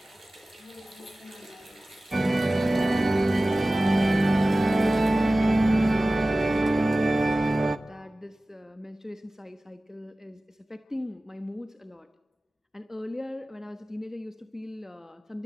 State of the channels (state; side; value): normal; both; correlation 0.97